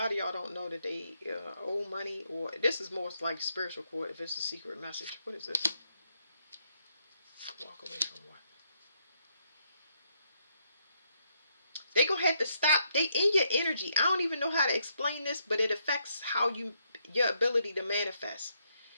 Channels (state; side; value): inverted; both; correlation -0.76